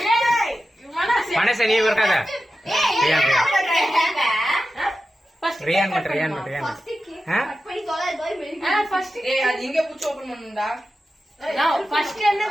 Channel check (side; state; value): both; normal; correlation 0.92